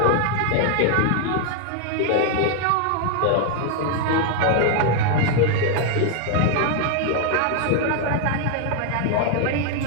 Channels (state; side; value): different; both; correlation 0.00